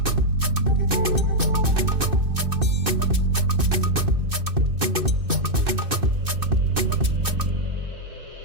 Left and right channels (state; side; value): late; left; 2.6 ms